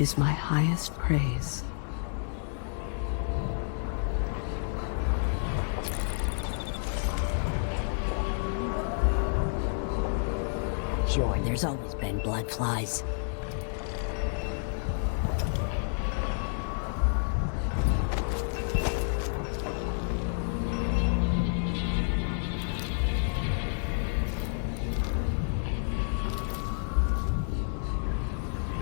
my highest praise. Sure, there's always been blood flies.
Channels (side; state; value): right; silent; 58 dB below the other